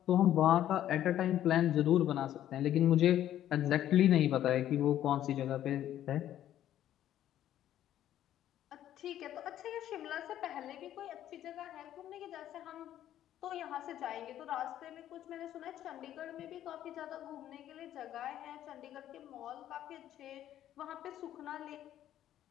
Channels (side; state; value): right; quieter; 11.9 dB